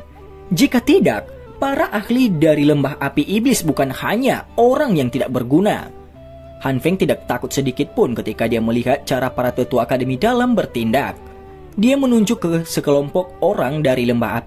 Jika tidak, para ahli dari lembah api iblis bukan hanya orang yang tidak berguna. Han Feng tidak takut sedikit pun ketika dia melihat cara para tetua akademi dalam bertindak. Dia menunjuk ke sekelompok orang dari lembah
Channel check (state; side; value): identical; both; correlation 1.00